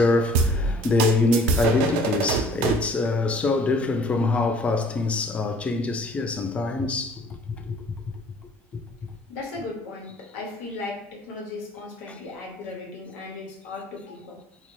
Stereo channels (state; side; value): normal; both; correlation 0.54